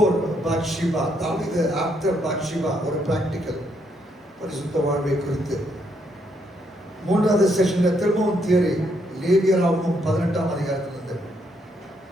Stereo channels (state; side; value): normal; both; correlation 0.74